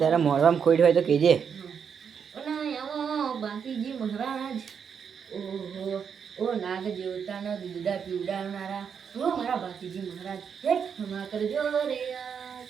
મોઢામાં ખોટ હોય તો કેજે બાંકીજી મહારાજ ઓહો ઓ નાગ દેવતાના દૂધા પીવડાવનારા ઓ મારા બાંકીજી મહારાજ હે ક્ષમા કરજો રે યાર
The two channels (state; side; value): quieter; left; 7.0 dB